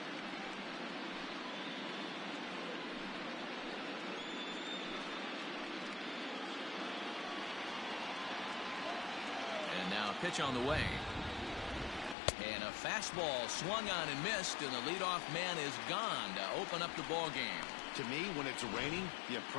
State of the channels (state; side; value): drops out; right; at 12.2 s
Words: And now a pitch on the way. And a fastball swung on and missed, and the leadoff man is gone to open up the ball game. To me, when it's raining, the